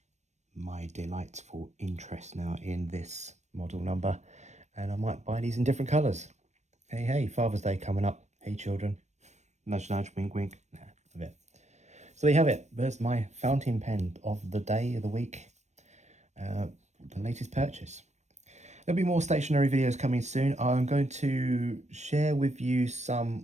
my delightful interest now in this model number. And I might buy these in different colours. Hey, Father's Day coming up. Hey, children. Nudge, nudge, wink, wink. Nah, a bit. So there you have it. There's my fountain pen of the day, of the week. The latest purchase. There'll be more stationery videos coming soon. I'm going to share with you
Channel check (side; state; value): left; late; 0.33 ms